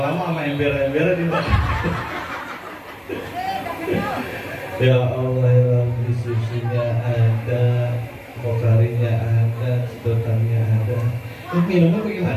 sama ember-ember di mana? Ya Allah ya Rabbi, susunya ada, pokarinya ada, sedotannya ada. Minumnya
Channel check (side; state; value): both; identical; correlation 1.00